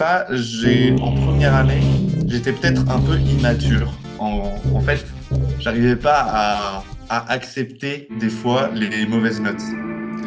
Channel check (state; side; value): identical; both; correlation 1.00